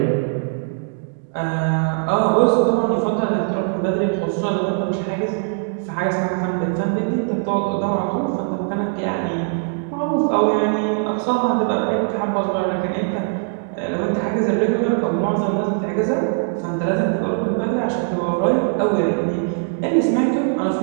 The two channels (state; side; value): silent; left; 62 dB below the other